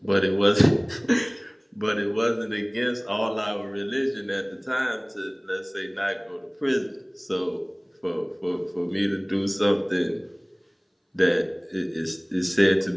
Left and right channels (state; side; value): identical; both; correlation 1.00